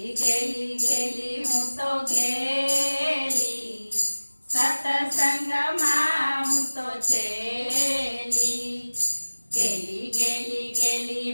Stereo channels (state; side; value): inverted; both; correlation -1.00